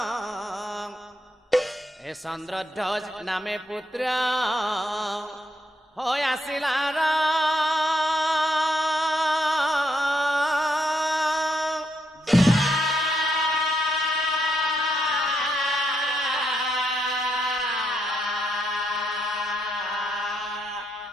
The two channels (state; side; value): normal; both; correlation 0.78